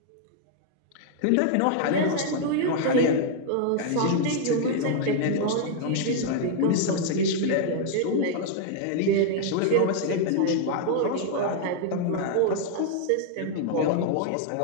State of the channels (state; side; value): different; both; correlation 0.00